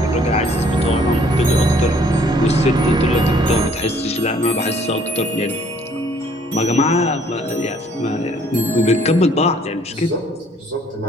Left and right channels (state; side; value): normal; both; correlation 0.61